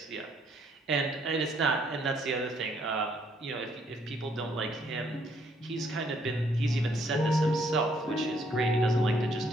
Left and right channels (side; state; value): both; normal; correlation 0.69